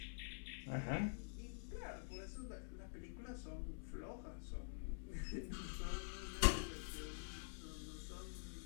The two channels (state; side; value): silent; right; digital silence